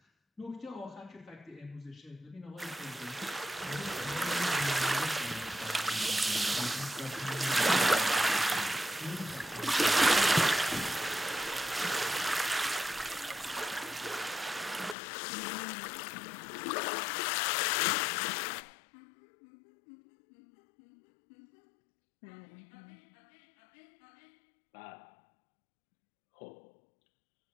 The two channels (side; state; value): right; drops out; at 15.0 s